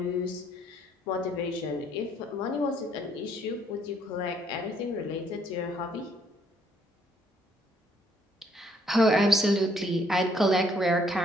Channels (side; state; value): both; normal; correlation 0.66